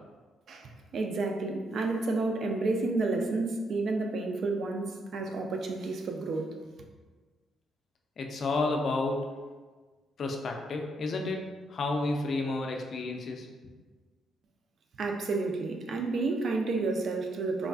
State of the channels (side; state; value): both; normal; correlation 0.76